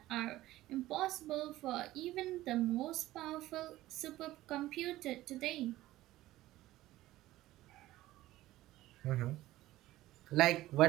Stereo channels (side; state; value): left; quieter; 16.1 dB